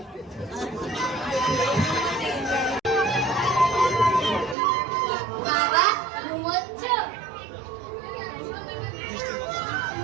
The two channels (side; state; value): left; drops out; at 4.5 s